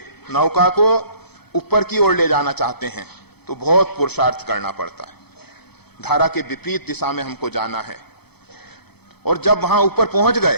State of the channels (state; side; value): late; right; 0.97 ms